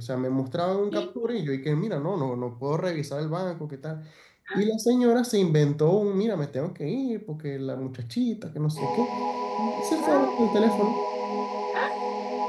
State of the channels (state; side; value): identical; both; correlation 1.00